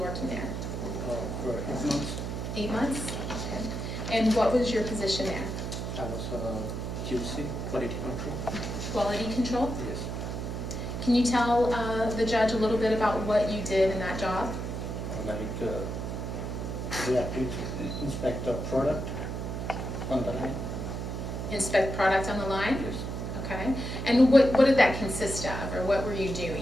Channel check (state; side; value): noise; right; hum, 4 dB below the sound